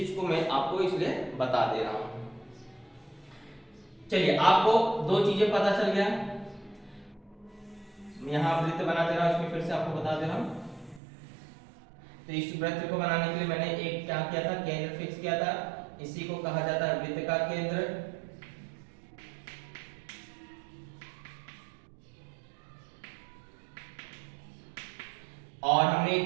को मैं आपको इसलिए बता दे रहा हूँ। चलिए, आपको दो चीजें पता चल गया। यहाँ वृत्त बना दे रहा हूँ, इसमें फिर से आपको बता दे रहा हूँ। तो इस वृत्त को बनाने के लिए मैंने एक क्या किया था? केंद्र फिक्स किया था, इसी को कहा जाता है वृत्त का केंद्र। और हमने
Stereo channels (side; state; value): left; drops out; at 11.0 s